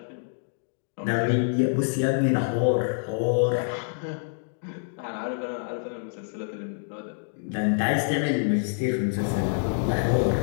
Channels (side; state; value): right; silent; digital silence